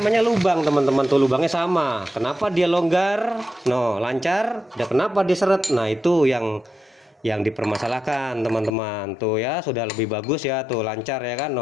lubang teman-teman, tuh lubangnya sama. Kenapa dia longgar? No, lancar. Dan kenapa dia seret? Nah, itu yang dipermasalahkan teman-teman. Tuh ya, sudah lebih bagus ya, tuh lancar ya kan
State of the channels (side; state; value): right; drops out; at 8.7 s